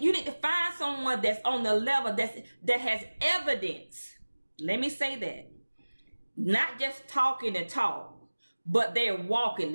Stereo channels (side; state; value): both; inverted; correlation -1.00